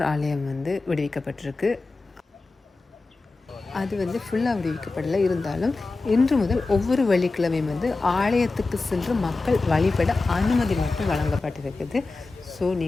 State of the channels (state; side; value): quieter; right; 3.6 dB